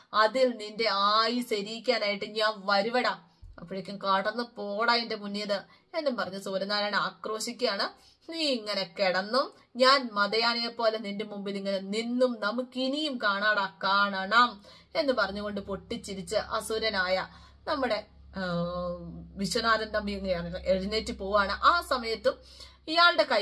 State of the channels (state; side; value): identical; both; correlation 1.00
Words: അതിൽ നിന്റെ ആയുസ് എരിയിക്കാനായിട്ട് ഞാൻ വരുവടാ. അപ്പോഴേക്കും കടന്നു പോടാ എന്റെ മുന്നിയത് എന്നും പറഞ്ഞ് സൂര്യനാരായണ ആക്രോശിക്കുകയാണ്. നീ ഇങ്ങനെ കിടന്നും ഞാൻ മതയാനയെ പോലെ നിന്റെ മുമ്പിൽ ഇങ്ങനെ നിന്നും നമുക്കിനിയും കാണാടാ, കാണണം എന്ന് പറഞ്ഞുകൊണ്ട് പൊട്ടിച്ചിരിച്ച് അസുരനായ നമ്മുടെ വിശ്വനാഥൻ തമ്പി എഴുന്നേറ്റ് പോവാണ്. ആ സമയത്തും ഇയാളുടെ